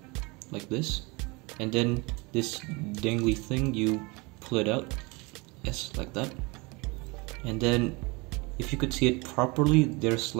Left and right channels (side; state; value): left; quieter; 26.7 dB